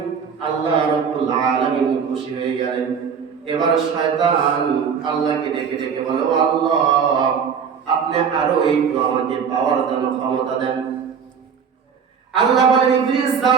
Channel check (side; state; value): left; quieter; 6.7 dB